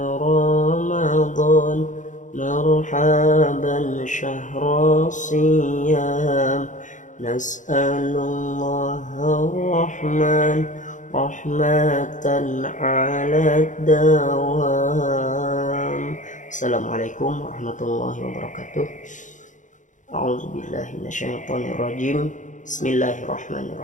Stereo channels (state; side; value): late; right; 0.36 ms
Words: رمضان مرحبا شهر الصيام نسأل الله الرحمن رحمة على الدوام. Assalamualaikum warahmatullahi wabarakatuh. A'udzubillahi minasyaitonirrajim.